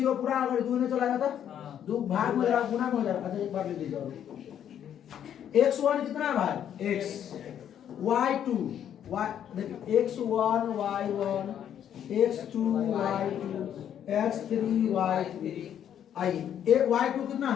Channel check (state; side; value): quieter; right; 9.7 dB